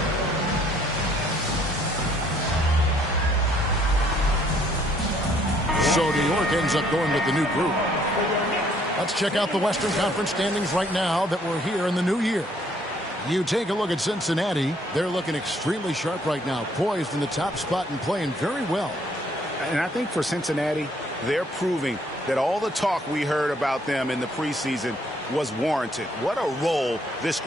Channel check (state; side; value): normal; both; correlation 0.65